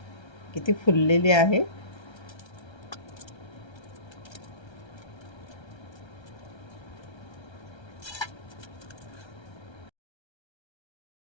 किती फुललेली आहे.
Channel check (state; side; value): late; right; 1.3 ms